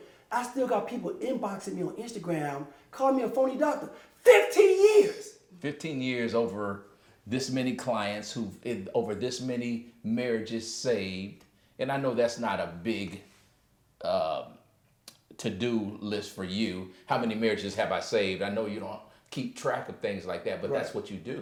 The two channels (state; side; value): identical; both; correlation 1.00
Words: I still got people inboxing me on Instagram, calling me a phony doctor. 15 years. 15 years over this many clients over this many marriages saved. And I know that's not a big to-do list for you. How many marriages have I saved? I know you don't keep track of things like that, but that's what you